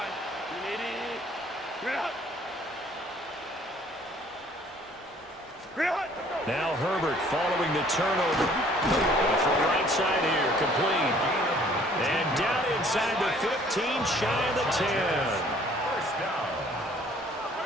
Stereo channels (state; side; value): normal; both; correlation 0.57